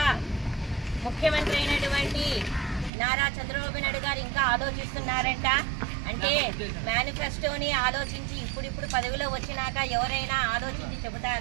ముఖ్యమంత్రి అయినటువంటి నారా చంద్రబాబు నాయుడు గారు ఇంకా ఆలోచిస్తున్నారంట. అంటే మేనిఫెస్టోని ఆలోచించి ఇప్పుడు పదవిలో వచ్చినాక ఎవరైనా ఆలోచించి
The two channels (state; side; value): drops out; left; at 2.9 s